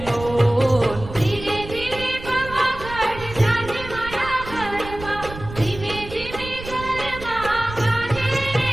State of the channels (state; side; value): noise; right; rumble, 12 dB below the sound